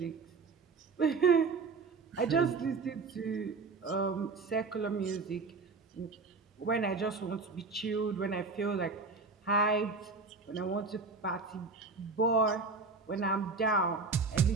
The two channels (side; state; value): left; quieter; 4.2 dB